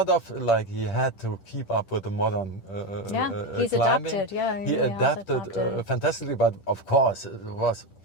of, like he had to keep up with the modern he's climbing. adapted. He adapted fantastically, but of course it was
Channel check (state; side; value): late; right; 10 ms